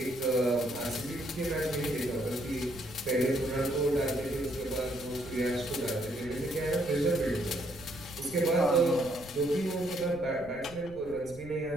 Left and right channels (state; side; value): noise; left; rumble, 17 dB below the sound